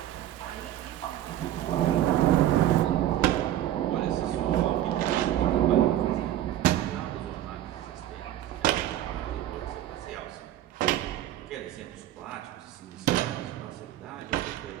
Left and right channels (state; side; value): quieter; left; 12.7 dB